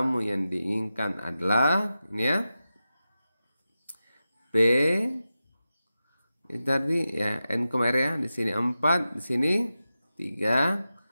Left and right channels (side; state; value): both; inverted; correlation -0.92